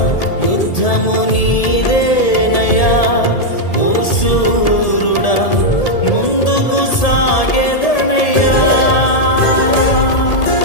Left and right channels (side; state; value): right; late; 1.8 ms